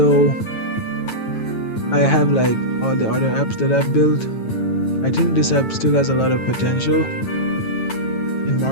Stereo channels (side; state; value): right; late; 9.1 ms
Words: I have like all the other apps that I've built, I think this app still has a lot of potential in